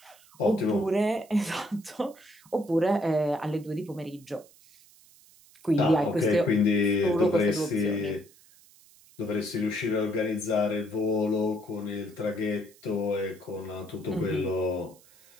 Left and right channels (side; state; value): right; noise; hiss, 26 dB below the sound